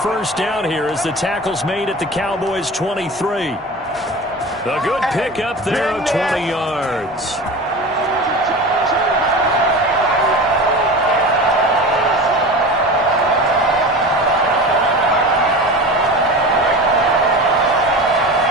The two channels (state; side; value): normal; both; correlation 0.32